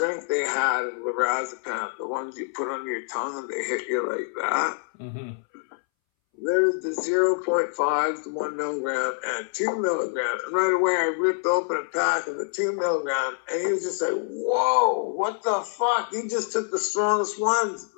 they had of lorazepam, the ones you put under your tongue and they hit you like that. Mm-hmm. There's the 0.5, the 1 milligram, and 2 milligram. And right away, I ripped open a pack of the 2 milligram, and he was just like, whoa, what the fuck? You just took the strongest ones,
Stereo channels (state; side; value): silent; right; 61 dB below the other